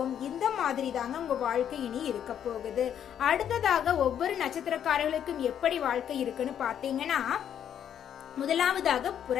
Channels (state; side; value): quieter; right; 9.4 dB